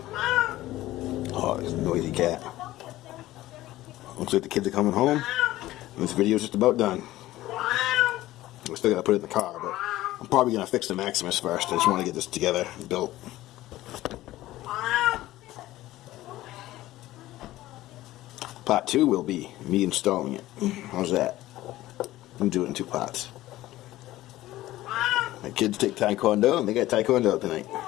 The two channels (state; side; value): quieter; right; 16.0 dB